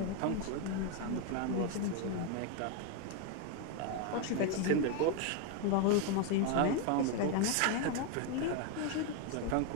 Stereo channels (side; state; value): both; different; correlation 0.01